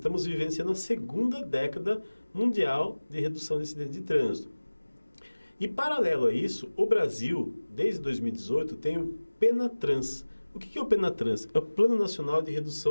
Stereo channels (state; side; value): inverted; both; correlation -1.00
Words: vivenciando a segunda década mundial de redução de acidentes de trânsito. E, paralelo a isso, o Brasil, desde 2018, tem o PENATRANS. O que é o PENATRANS? É o Plano Nacional de